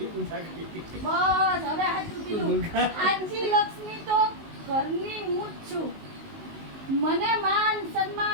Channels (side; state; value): left; late; 19 ms